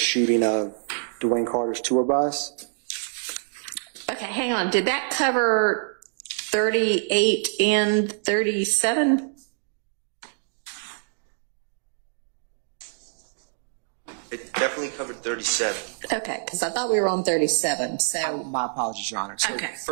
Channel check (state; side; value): silent; left; digital silence